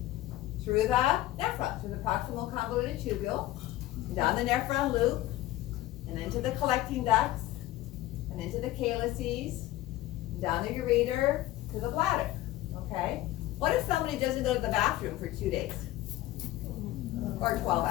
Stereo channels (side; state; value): right; quieter; 15.7 dB